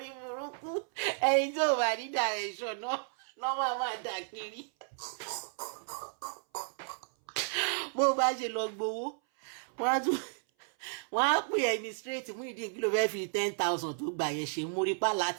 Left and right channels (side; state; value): left; silent; 56 dB below the other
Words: burúkú ẹni tí ò bá ní direction náà máa dà kiri bó bá ṣe lọ gbowó wọ́n á pè ẹni straight mú ìdí kí ló fẹ́ fi 10,000 tó gbà yẹn ṣe mórí pa